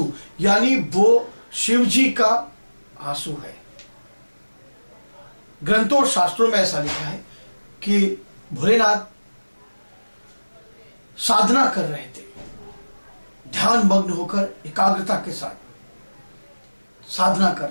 यानी वो शिव जी का आंसू है। ग्रंथों और शास्त्रों में ऐसा लिखा है कि भोलेनाथ साधना कर रहे थे, ध्यान मग्न होकर एकाग्रता के साथ साधना कर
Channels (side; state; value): both; inverted; correlation -1.00